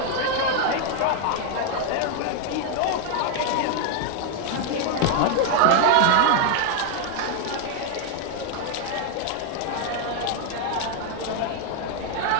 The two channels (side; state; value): both; different; correlation 0.00